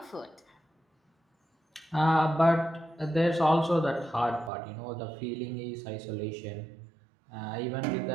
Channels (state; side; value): drops out; left; at 4.5 s